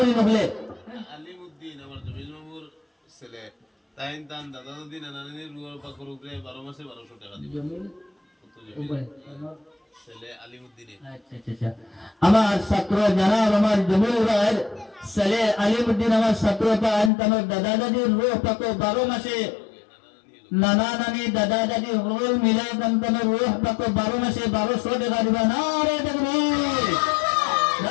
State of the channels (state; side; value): drops out; right; at 17.1 s